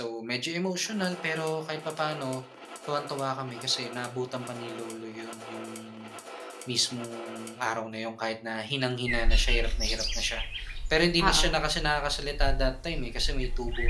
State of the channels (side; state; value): both; identical; correlation 1.00